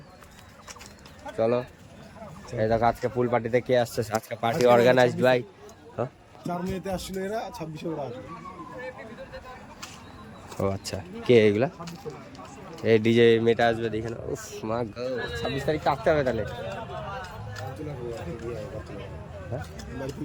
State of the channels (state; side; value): identical; both; correlation 1.00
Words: চলো। এই দেখো আজকে ফুল পার্টিতে কে আসছে, আজকে পার্টি অর্গানাইজড ভাই। 4 মেতে আসছিল এরা, 26 ওরা আসবে। ও আচ্ছা, কে এগুলা? এই ডিজে মেটা আসবে দেখে না। উফ মা গো, 26 তারিখ আসতে হবে তাহলে। হ্যাঁ বাড়ি